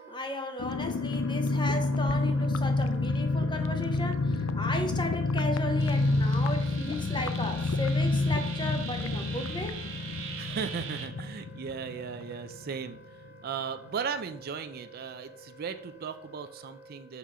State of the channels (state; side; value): normal; both; correlation 0.66